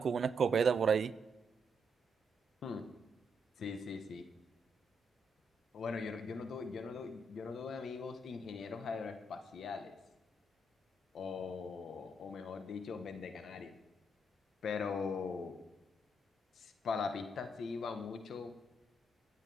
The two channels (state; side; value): normal; both; correlation 0.77